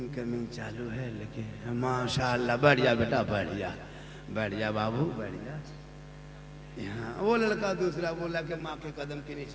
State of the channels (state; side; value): identical; both; correlation 1.00